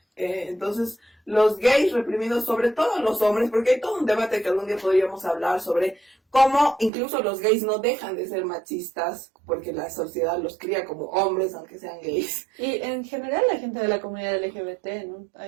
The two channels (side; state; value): left; drops out; at 6.9 s